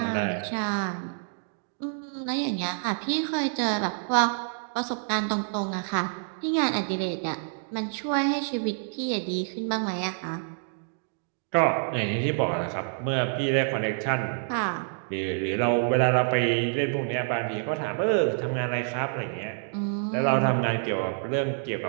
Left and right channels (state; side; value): silent; left; digital silence